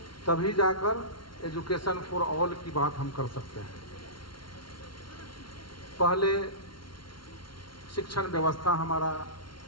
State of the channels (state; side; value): late; right; 0.73 ms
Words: तभी जाकर एजुकेशन फॉर ऑल की बात हम कर सकते हैं। पहले शिक्षण व्यवस्था हमारा